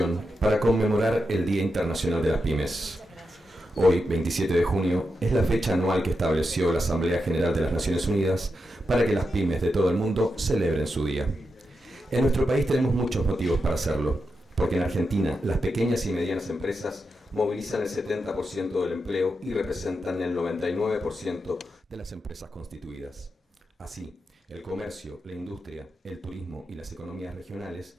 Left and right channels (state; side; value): normal; both; correlation 0.87